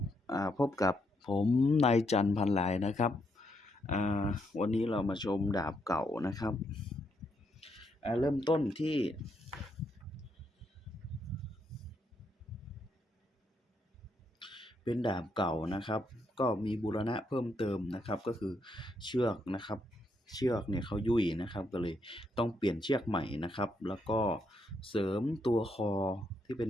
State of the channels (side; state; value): both; normal; correlation 0.77